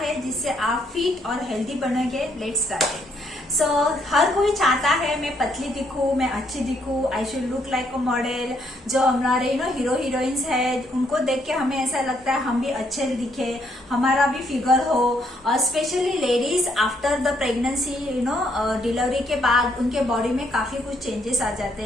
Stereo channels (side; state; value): both; normal; correlation 0.71